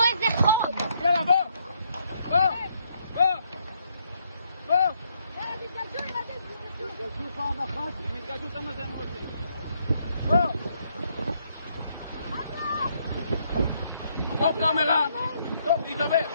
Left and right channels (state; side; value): inverted; both; correlation -0.72